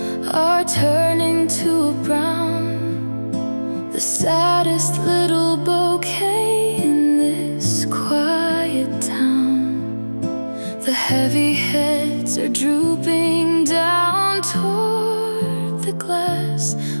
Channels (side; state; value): both; inverted; correlation -1.00